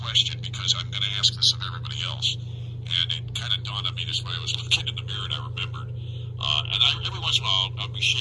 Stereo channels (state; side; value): identical; both; correlation 1.00